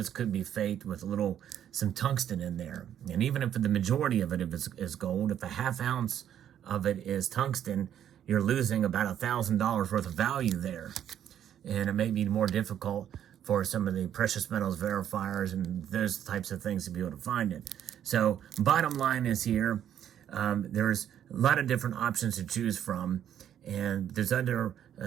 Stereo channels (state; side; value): quieter; left; 10.1 dB